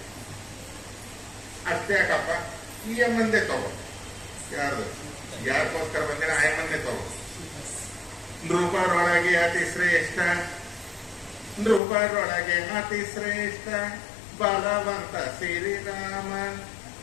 ಅಷ್ಟೇ ಯಾಕಪ್ಪ, ಈ ಅಮ್ಮಂದೇ ತಗೋ. ಯಾರಿಗೋಸ್ಕರ ಬಂದಿನ ಆ ಅಮ್ಮಂದೇ ತಗೋ. ನೃಪರೊಳಗೆ ಅತಿ ಶ್ರೇಷ್ಠ, ನೃಪರೊಳಗೆ ಅತಿ ಶ್ರೇಷ್ಠ ಬಲವಂತ ಶ್ರೀರಾಮ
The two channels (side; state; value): right; drops out; at 11.8 s